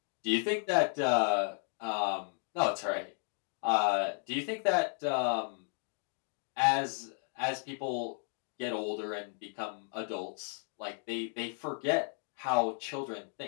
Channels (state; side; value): silent; right; 55 dB below the other